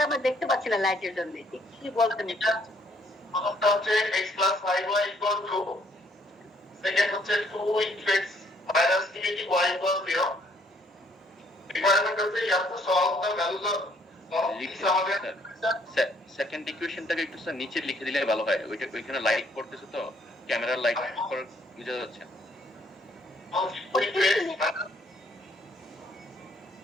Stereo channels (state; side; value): normal; both; correlation 0.66